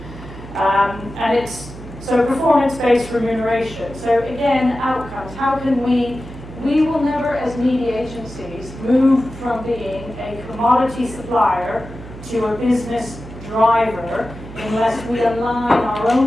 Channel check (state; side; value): noise; right; hum, 14 dB below the sound